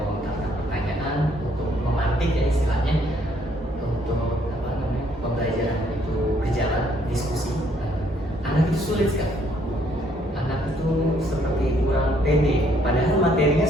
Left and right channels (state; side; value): normal; both; correlation 0.67